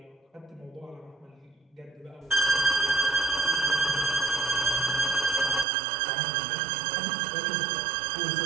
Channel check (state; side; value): drops out; left; at 5.7 s